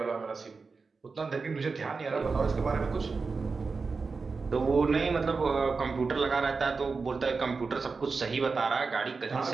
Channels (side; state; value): left; quieter; 4.5 dB